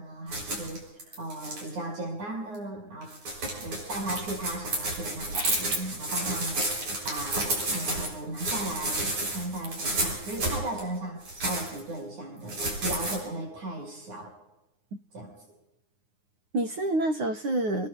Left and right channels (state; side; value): late; left; 9.6 ms